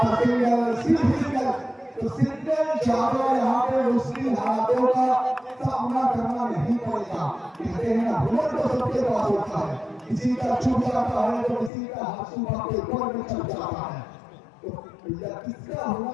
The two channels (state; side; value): drops out; right; at 11.7 s